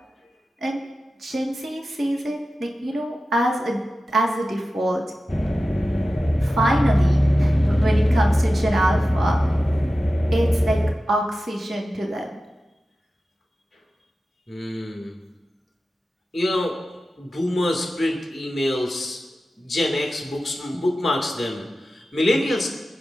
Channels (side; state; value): both; normal; correlation 0.94